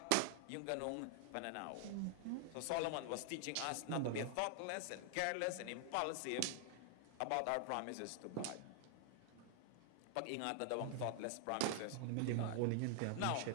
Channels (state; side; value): different; both; correlation 0.00